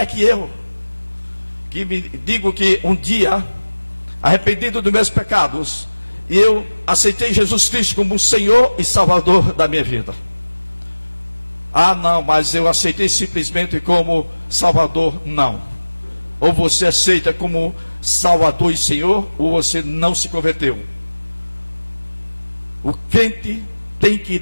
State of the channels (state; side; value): inverted; both; correlation -1.00